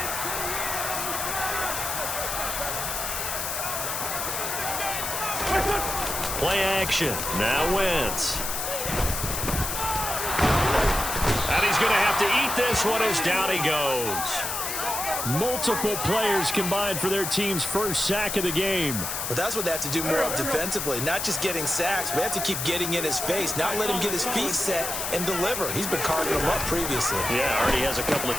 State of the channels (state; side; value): noise; left; hiss, 3 dB below the sound